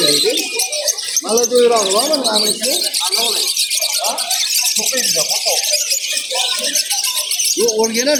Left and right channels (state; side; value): identical; both; correlation 1.00